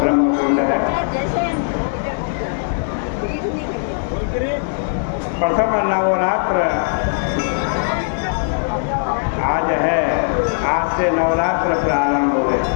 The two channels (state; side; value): silent; right; 66 dB below the other